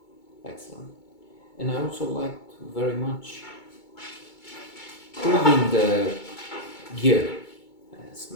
excellent. And I also liked very much proving the gear as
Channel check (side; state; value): right; late; 2.2 ms